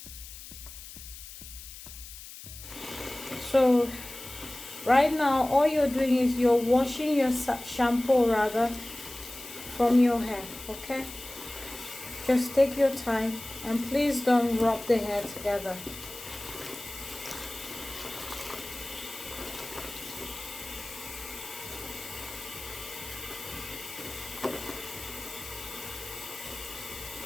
So right now, all you're doing is you're washing your shampoo rather from your hair, okay? Just take your time and please don't rub the hair together.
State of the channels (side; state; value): left; noise; hiss, 14 dB below the sound